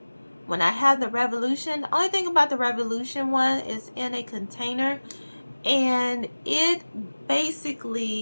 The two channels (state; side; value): inverted; both; correlation -1.00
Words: When I have the Revolution, the only thing about the Revolution one is in a container. And it